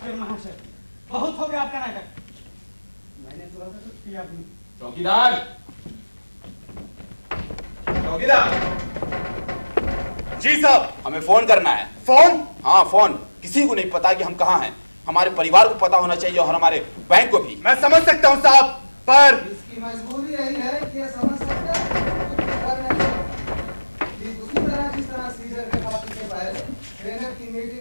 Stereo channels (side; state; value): both; inverted; correlation -1.00